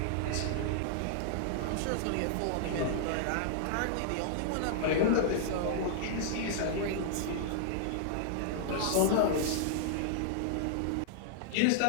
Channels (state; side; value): different; both; correlation -0.01